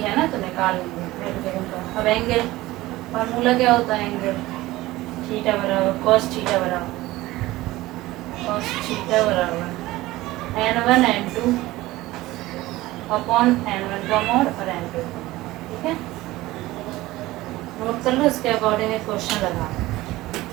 ना, तो निकाल लेंगे। अब एंगल फार्मूला क्या होता है? एंगल थीटा बराबर cos थीटा बराबर n1 n2 अपॉन n1 का मोड और n2। ठीक है, नोट कर लो। इसके अकॉर्डिंग एक क्वेश्चन लगा।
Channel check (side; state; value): left; quieter; 18.0 dB